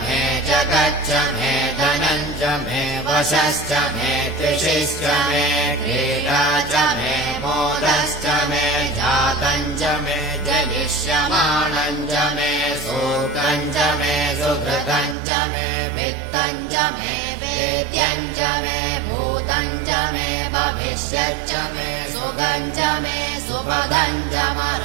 मे जगच्च मे धनम् च मे वशश्च मे त्रिषिश्च मे क्रीडा च मे मोदश्च मे जातम् च मे जनिष्यमाणम् च मे सूक्तम् च मे सुकृतम् च मे वित्तम् च मे वेद्यम् च मे भूतम् च मे भविष्यच्च मे सुखम् च मे सुपदम् च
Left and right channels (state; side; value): drops out; left; at 15.2 s